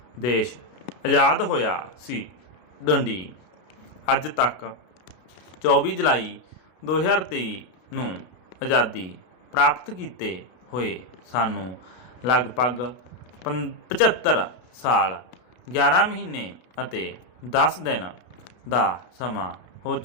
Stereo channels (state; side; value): late; right; 33 ms